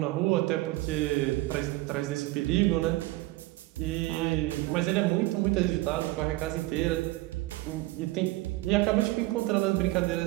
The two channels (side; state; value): left; quieter; 19.3 dB